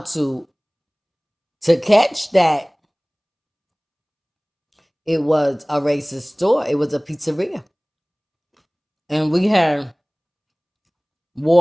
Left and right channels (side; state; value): both; identical; correlation 1.00